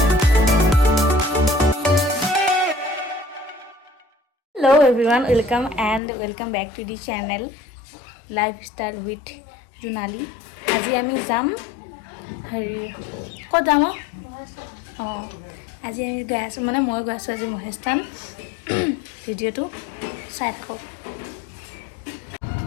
Hello everyone, welcome back to the channel Lifestyle with Junali. আজি আমি যাম ক'ত যাম আজি আমি গৈ আছোঁ মানে মই গৈ আছোঁ আজি মহেশস্থান ভিডিঅ'টো চাই থাকক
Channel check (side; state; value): right; drops out; at 6.0 s